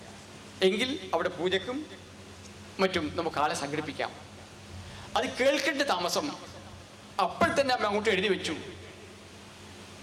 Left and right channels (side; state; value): both; identical; correlation 1.00